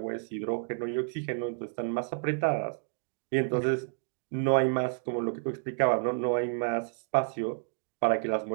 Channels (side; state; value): left; silent; digital silence